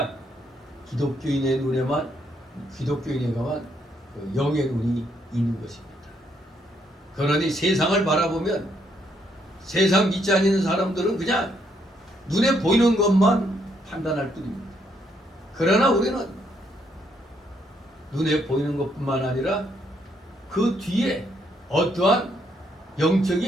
기독교인의 눈에만 그 영의 눈이 있는 것입니다. 그러니 세상을 바라보면 세상 믿지 않는 사람들은 그냥 눈에 보이는 것만 판단할 뿐입니다. 그러나 우리는 눈에 보이는 것뿐만 아니라 그 뒤에 어떠한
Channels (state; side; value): normal; both; correlation 0.73